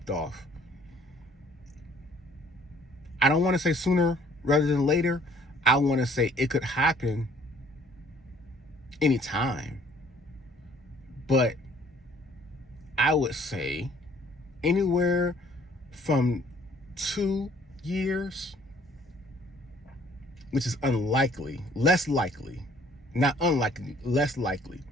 off. I don't want to say sooner rather than later. I want to say it could happen anytime. But I would say anywhere from 2 years, which is unlikely, less likely, not unlikely, less likely.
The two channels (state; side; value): normal; both; correlation 0.58